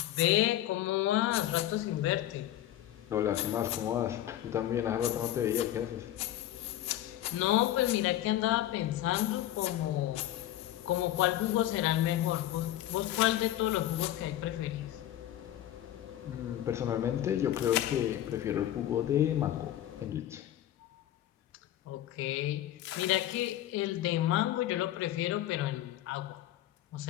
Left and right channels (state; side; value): quieter; right; 13.1 dB